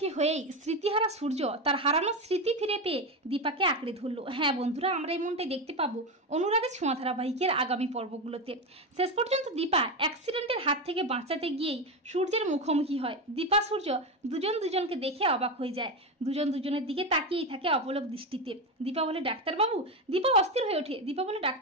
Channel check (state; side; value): normal; both; correlation 0.16